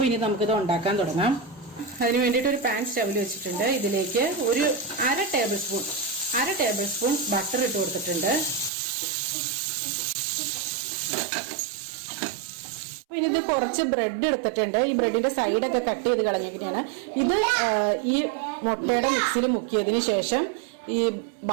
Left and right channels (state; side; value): drops out; left; at 8.7 s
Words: ഇനി നമുക്കിത് ഉണ്ടാക്കാൻ തുടങ്ങാം. അതിന് വേണ്ടിയിട്ട് ഒരു പാൻ സ്റ്റൗവിൽ വെച്ചിട്ടുണ്ട്. ഇതിലേക്ക് ഒരു അര ടേബിൾ സ്പൂൺ ബട്ടർ ഇട്ട് കൊടുത്തിട്ടുണ്ട്. ഇനി ഇത് കുറച്ച് ബ്രെഡ് എടുത്തിട്ടുണ്ട്. ഈ ബ്രെഡിന്റെ സൈഡൊക്കെ കട്ട് ചെയ്ത് കളഞ്ഞിരിക്കുകയാണ്. ഇത് ഈ മുട്ടയുടെ മിക്സിയിൽ മുക്കിയതിന് ശേഷം ഈ